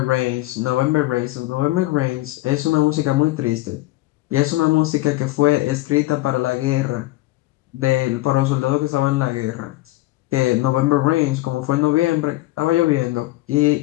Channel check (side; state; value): right; quieter; 18.6 dB